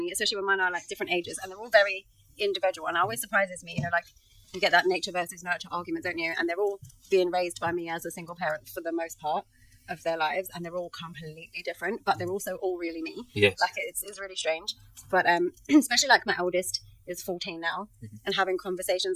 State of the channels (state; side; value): identical; both; correlation 1.00